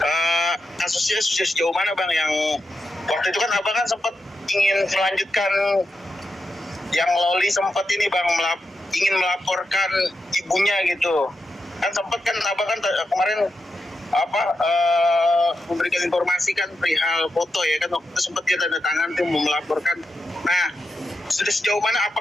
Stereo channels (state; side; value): normal; both; correlation 0.87